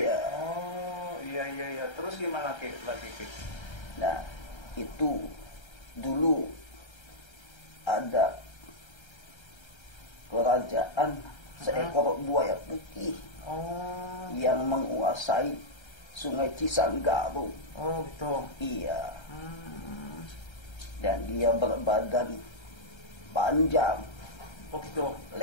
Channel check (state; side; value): late; right; 1.3 ms